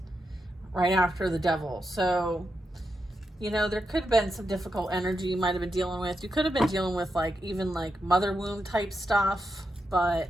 right after the Devil. So, you know, there could have been some difficult energy you might have been dealing with. You could have been dealing with like even like mother wound type stuff, but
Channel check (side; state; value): both; normal; correlation 0.86